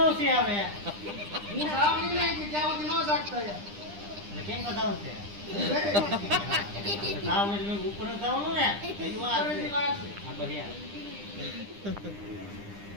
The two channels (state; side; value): late; left; 9.9 ms